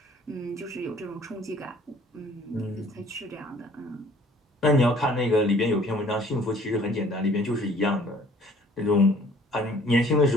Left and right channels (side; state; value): both; normal; correlation 0.55